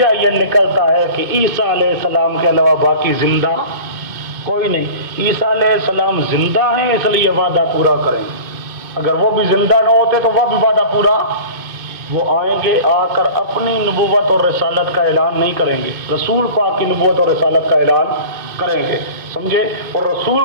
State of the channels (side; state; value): left; late; 2.2 ms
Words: یہ نکلتا ہے کہ عیسیٰ علیہ السلام کے علاوہ باقی زندہ کوئی نہیں۔ عیسیٰ علیہ السلام زندہ ہیں، اس لیے وعدہ پورا کریں گے۔ اگر وہ بھی زندہ نہ ہوتے تو وہ بھی وعدہ پورا، وہ آئیں گے، آ کر اپنی نبوت اور رسالت کا اعلان نہیں کریں گے، رسول پاک کی نبوت اور رسالت کا اعلان کریں گے، سمجھے، اور رسول